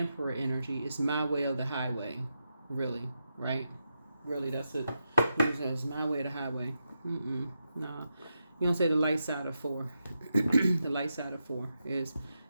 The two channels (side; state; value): both; inverted; correlation -0.87